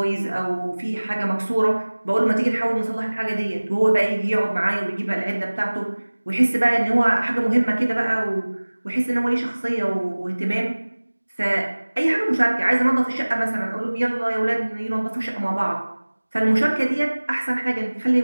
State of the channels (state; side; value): inverted; both; correlation -1.00